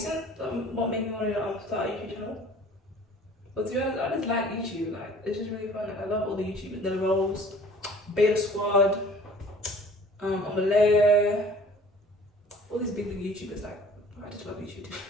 What made me want to start a YouTube channel. But to be honest, I just like YouTube. Like, it's just really fun. Like, I love all the YouTubers. The Rolls, Beta Squad, Omelette, all these big YouTubers. Like, I just love YouTube too.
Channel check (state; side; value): normal; both; correlation 0.49